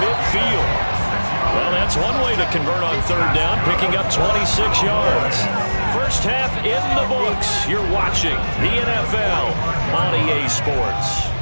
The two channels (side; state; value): both; inverted; correlation -1.00